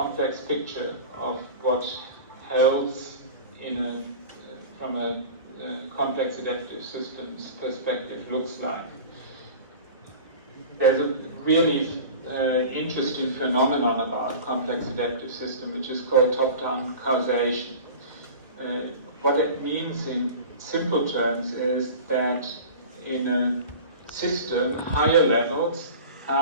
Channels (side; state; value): both; inverted; correlation -0.36